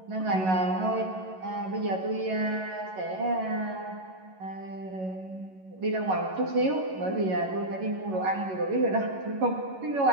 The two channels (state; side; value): late; left; 11 ms